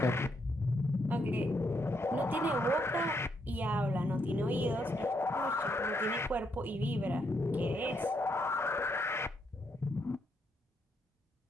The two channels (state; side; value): normal; both; correlation 0.77